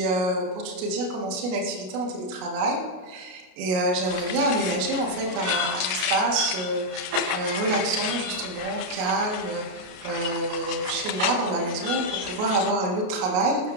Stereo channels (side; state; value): left; late; 33 ms